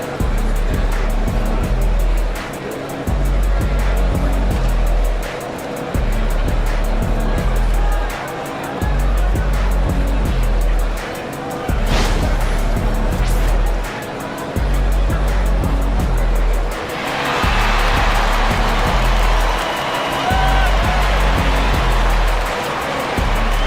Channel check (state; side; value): identical; both; correlation 1.00